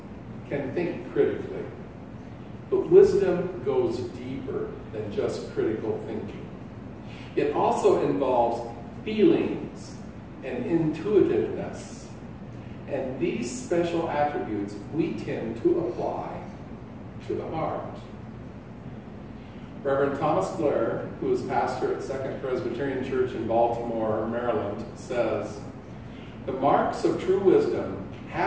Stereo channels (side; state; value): both; identical; correlation 1.00